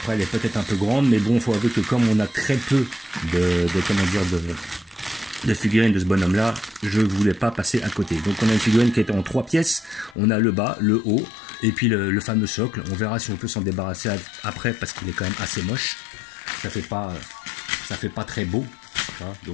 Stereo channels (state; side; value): drops out; right; at 10.2 s